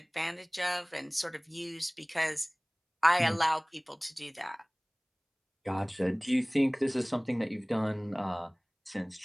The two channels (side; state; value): both; identical; correlation 1.00